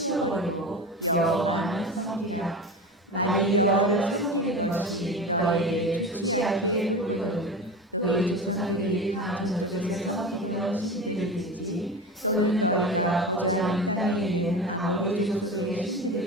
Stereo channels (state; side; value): normal; both; correlation 0.28